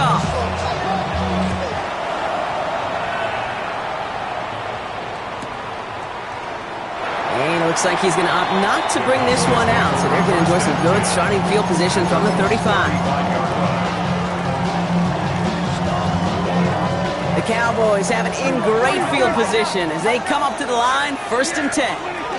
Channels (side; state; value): both; identical; correlation 1.00